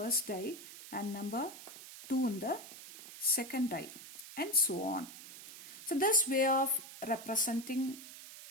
die and number 2 in the second die, and so on. So this way of representing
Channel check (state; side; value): noise; right; hiss, 14 dB below the sound